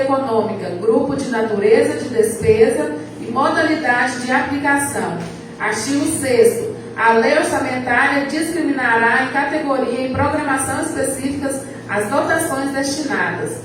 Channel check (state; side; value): identical; both; correlation 1.00